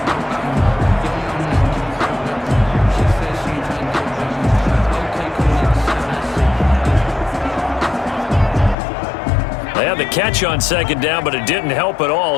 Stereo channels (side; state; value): right; drops out; at 8.8 s